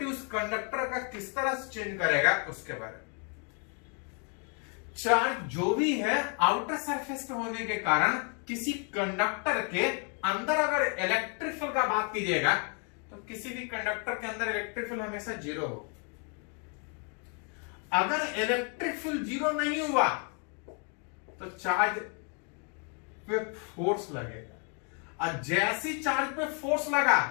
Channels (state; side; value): quieter; right; 38.6 dB